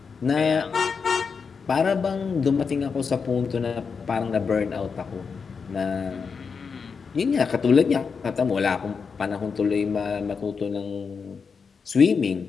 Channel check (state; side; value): quieter; right; 5.6 dB